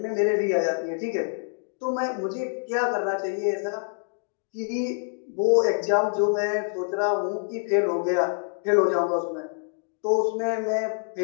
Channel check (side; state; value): right; silent; 61 dB below the other